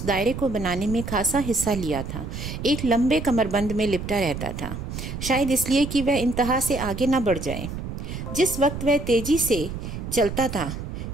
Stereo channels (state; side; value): noise; right; rumble, 7 dB below the sound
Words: दायरे को बनाने में खासा हिस्सा लिया था, एक लंबे कमरबंद में लिपटा रहता था, शायद इसलिए कि वह इंतहा से आगे न बढ़ जाए। जिस वक्त वह तेजी से चलता था,